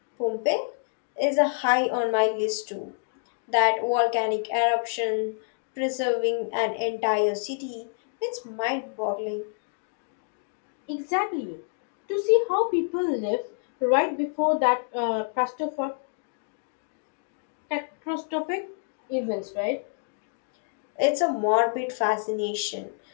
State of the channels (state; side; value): silent; right; digital silence